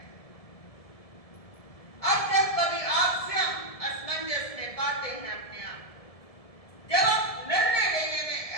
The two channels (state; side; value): late; right; 1.7 ms